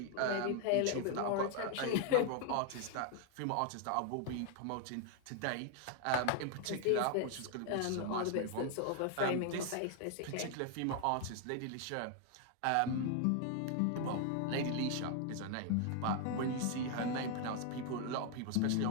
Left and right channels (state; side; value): different; both; correlation 0.00